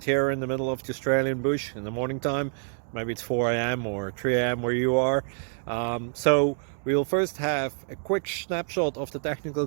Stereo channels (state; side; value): silent; left; 60 dB below the other